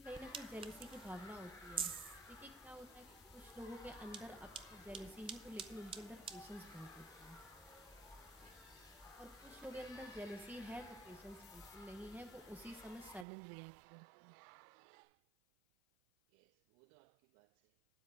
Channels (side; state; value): left; drops out; at 13.2 s